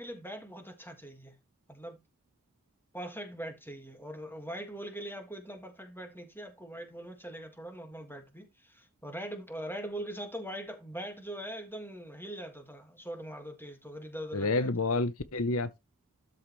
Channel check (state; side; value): normal; both; correlation 0.19